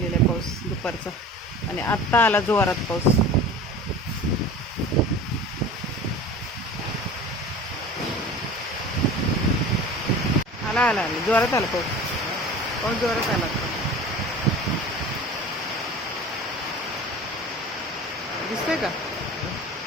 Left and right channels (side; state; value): both; normal; correlation 0.38